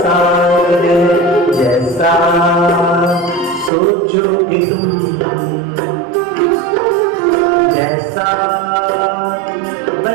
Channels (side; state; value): left; drops out; at 3.7 s